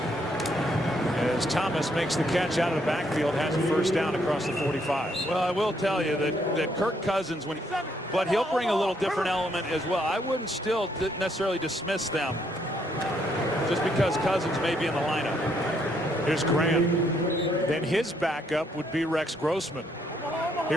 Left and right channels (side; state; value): both; normal; correlation 0.72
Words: As Thomas makes the catch out of the backfield, has a first down across the 45. Well, I will tell you that Kirk Cousins, but he'll bring a little different element as well. I wouldn't still necessarily dismiss them just because Cousins may be in the lineup. Here's Graham. Then his backup would be Rex Grossman